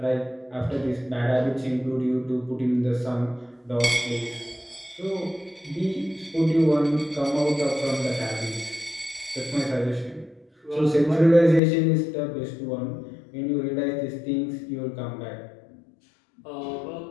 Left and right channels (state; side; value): drops out; right; at 11.6 s